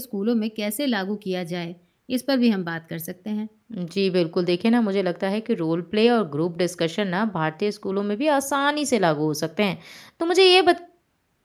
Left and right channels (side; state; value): both; identical; correlation 1.00